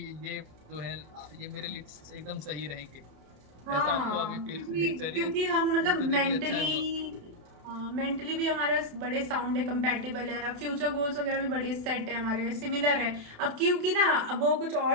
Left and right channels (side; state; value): left; late; 27 ms